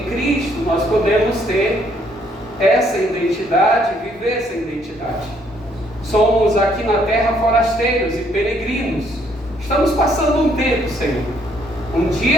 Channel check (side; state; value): both; normal; correlation 0.68